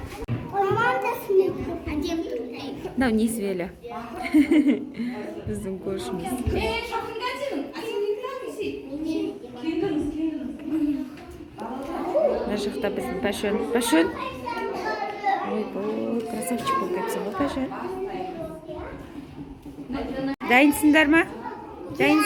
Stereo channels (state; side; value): identical; both; correlation 1.00